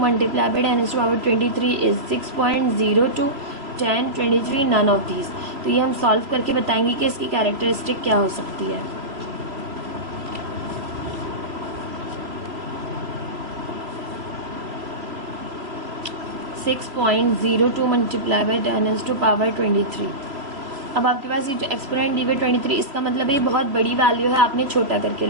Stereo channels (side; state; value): left; late; 3.0 ms